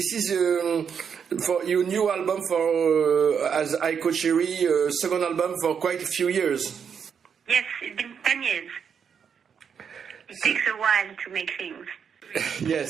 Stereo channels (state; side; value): quieter; left; 7.1 dB